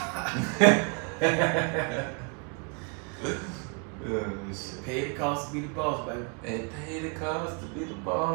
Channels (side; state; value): left; quieter; 35.8 dB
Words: Pay the cost to be the boss, baby. It paid the cost to be the